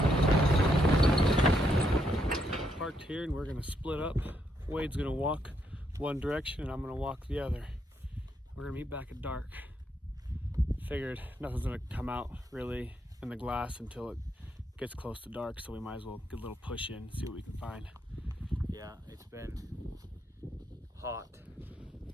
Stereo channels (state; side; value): normal; both; correlation 0.76